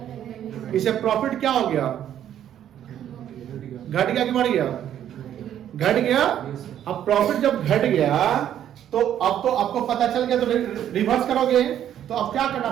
इसे प्रॉफिट क्या हो गया? घट गया कि बढ़ गया? घट गया। अब प्रॉफिट जब घट गया तो अब तो आपको पता चल गया, तो रिवर्स करोगे तो अब क्या करना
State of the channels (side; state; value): left; quieter; 10.6 dB